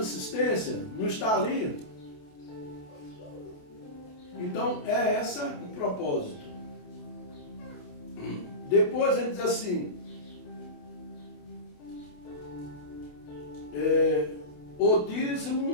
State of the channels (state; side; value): late; right; 28 ms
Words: não está ali. Então é esse o propósito. Depois ele diz assim, o